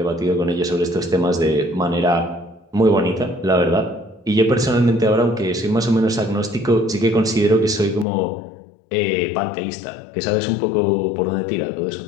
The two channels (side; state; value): right; drops out; at 8.1 s